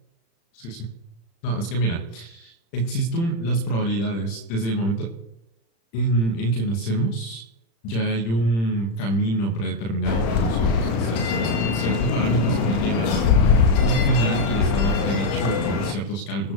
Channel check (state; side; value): late; right; 35 ms